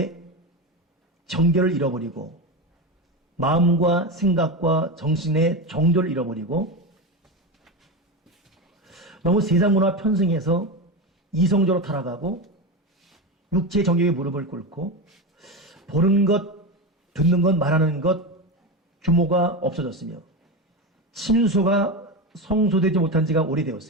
정결을 잃어버리고 마음과 생각과 정신의 정도를 잃어버리고 너무 세상 문화 편승해서 이성적으로 타락하고 육체의 정욕에 무릎을 꿇고 보는 것, 듣는 것, 말하는 것 규모가 없어졌으며 친소가 성소되지 못한 지가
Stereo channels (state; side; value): normal; both; correlation 0.18